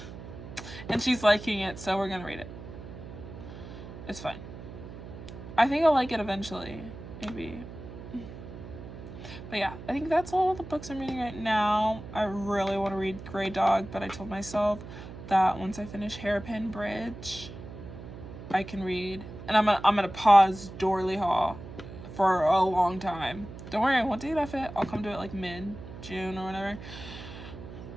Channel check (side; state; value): right; noise; hum, 13 dB below the sound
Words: And she's liking it, so we're gonna read it. It's fine. I think I'll like it eventually, maybe. But yeah, I think that's all the books I'm reading right now. I really want to read Grey Dog, but I told myself that once I finish Hairpin Bridge, I can read. And I'm gonna pause Dorley Hall for a long time. Don't worry, I won't DNF it. I'll come to it like mid-June or whatever.